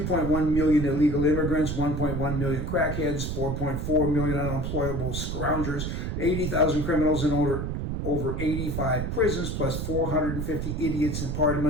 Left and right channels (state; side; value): noise; right; rumble, 3 dB below the sound